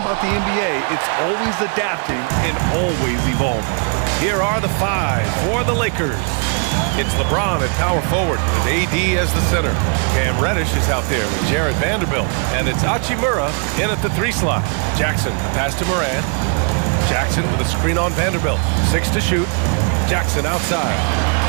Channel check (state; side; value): quieter; left; 39.4 dB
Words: the NBA. It's always adapting and always evolving. Here are the 5 for the Lakers. It's LeBron at power forward with AD as the center. Cam Reddish is out there with Jarred Vanderbilt. And it's Hachimura in at the 3 slot. Jackson, the pass to Morant. Jackson with a screen on Vanderbilt. 6 to shoot. Jackson outside.